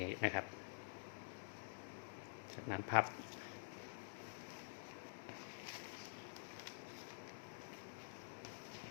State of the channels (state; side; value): silent; right; digital silence